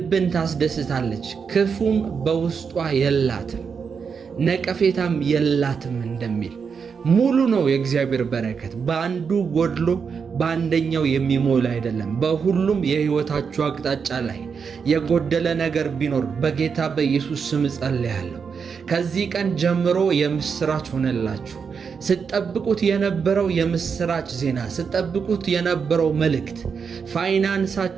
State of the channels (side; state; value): left; quieter; 6.0 dB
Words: ታስደስታለች፣ ክፉም በውስጧ የላትም፣ ነቀፌታም የላትም እንደሚል ሙሉ ነው የእግዚአብሔር በረከት። በአንዱ ጎድሎ በአንደኛው የሚሞላ አይደለም። በሁሉም የሕይወታችሁ አቅጣጫ ላይ የጎደለ ነገር ቢኖር በጌታ በኢየሱስ ስም ጸልያለሁ። ከዚህ ቀን ጀምሮ የምስራች ሆነላችሁ። ስትጠብቁት የነበረው የምስራች ዜና፣ ስትጠብቁት የነበረው መልእክት፣